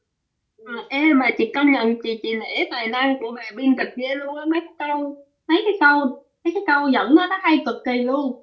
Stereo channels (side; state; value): both; identical; correlation 1.00